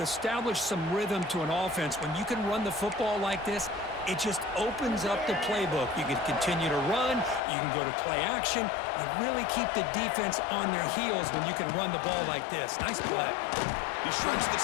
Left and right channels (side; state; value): right; drops out; at 7.4 s